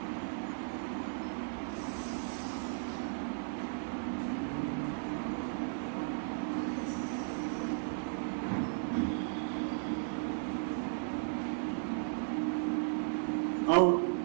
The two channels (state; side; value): silent; left; digital silence